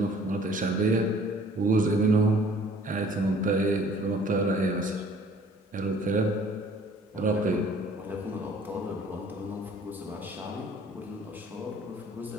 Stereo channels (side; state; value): both; normal; correlation 0.54